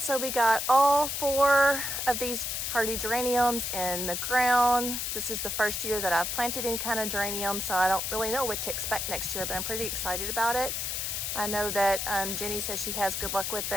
so we got all 4 of these hardy geraniums in the ground. This is the first year that I've planted any kind of geranium, so I don't really know what to expect next year, but I'm pretty excited about it. I know that Jenny says she has good luck with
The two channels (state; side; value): noise; left; hiss, 2 dB below the sound